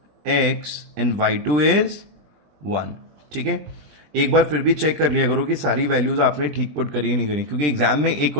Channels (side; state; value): left; late; 20 ms